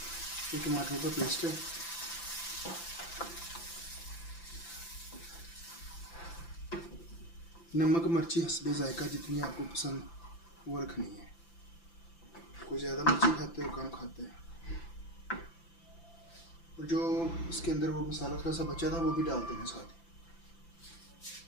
ये टमाटरों का पेस्ट है। नमक मिर्ची हस्बे जायका जितनी आपको पसंद वो रखनी है। कोई ज़्यादा मिर्ची खाते हो कम खाते हैं। और जो इसके अंदर वो मसाला थोड़ा सा बचा था वो भी डाल देना साथ ही।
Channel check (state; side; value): late; right; 5.9 ms